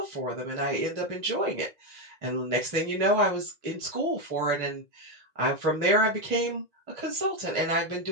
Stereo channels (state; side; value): late; left; 1.9 ms